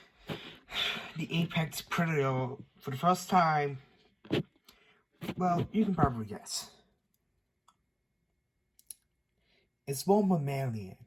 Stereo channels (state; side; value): identical; both; correlation 1.00